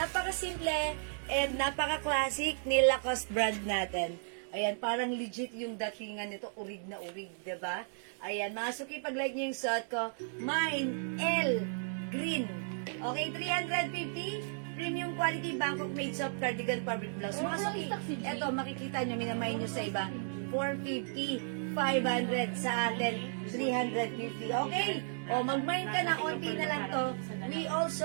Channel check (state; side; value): silent; left; digital silence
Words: and napaka-classic ni Lacoste brand natin. Ayan, parang legit yung datingan nito. Urig na urig, diba? Ayan, mga suki, pag-like nyo yung suot ko, Mine L Green. Okay, 350. Premium quality Bangkok made soft cardigan fabric blouse. Mga suki, eto, makikita nyo, minamay nyo sa iba. 450, 500 sa atin, 350. Okay? O, mag-mine ka na, konti na lang to. We